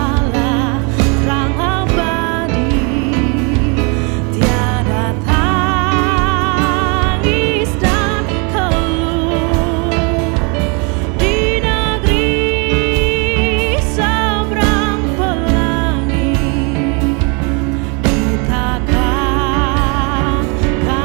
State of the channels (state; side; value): quieter; left; 33.1 dB